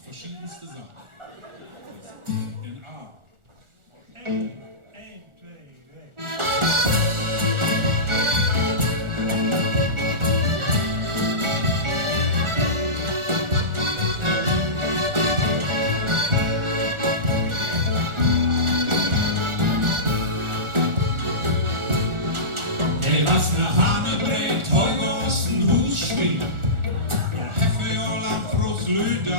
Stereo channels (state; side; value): late; left; 1.4 ms